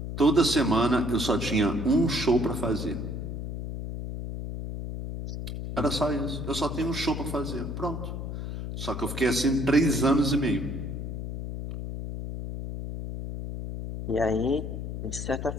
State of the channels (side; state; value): left; noise; hum, 6 dB below the sound